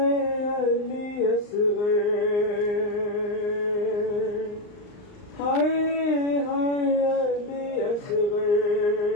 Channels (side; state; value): right; late; 39 ms